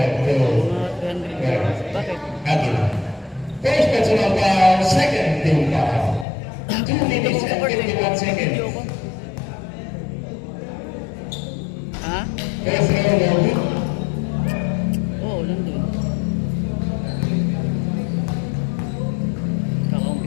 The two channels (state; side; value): drops out; right; at 6.2 s